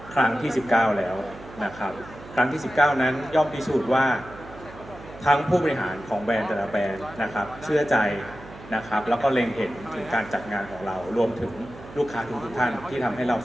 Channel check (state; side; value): noise; right; hum, 17 dB below the sound